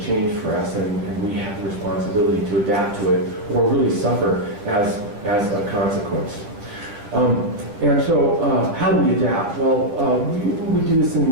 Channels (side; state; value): left; late; 9.8 ms